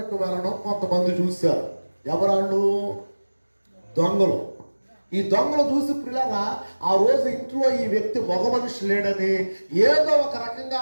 వెళ్ళడం కొంతమంది చూశారు. ఎవరాళ్ళు? దొంగలు. ఈ దొంగలు చూసి పిల్లరా ఆ రోజు ఇంట్లో ఈ వ్యక్తి మగ మనిషి లేడని ఏదో ఒక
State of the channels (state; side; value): inverted; both; correlation -1.00